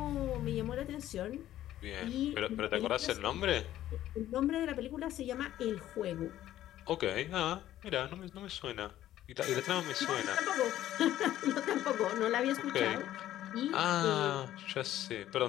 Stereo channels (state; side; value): quieter; right; 13.1 dB